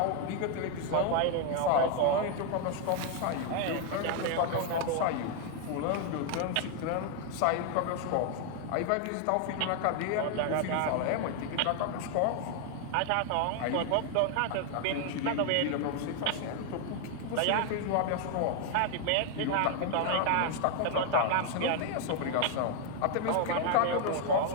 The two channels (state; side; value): different; both; correlation 0.00